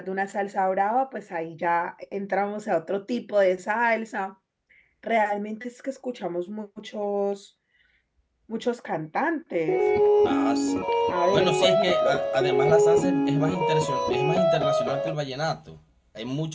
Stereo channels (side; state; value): both; identical; correlation 1.00